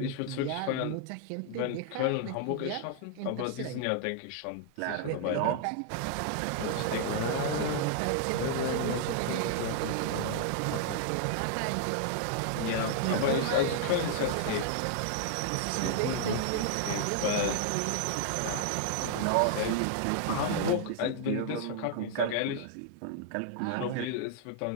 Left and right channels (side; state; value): both; different; correlation -0.01